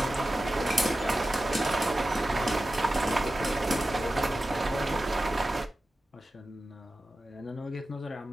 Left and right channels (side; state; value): both; normal; correlation 0.93